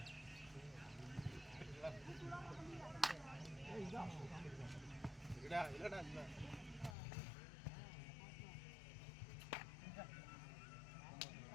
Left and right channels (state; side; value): drops out; right; at 7.0 s